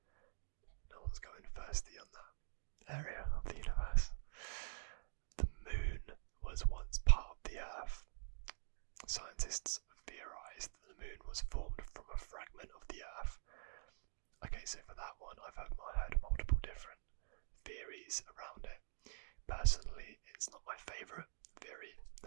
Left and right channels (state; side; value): silent; left; digital silence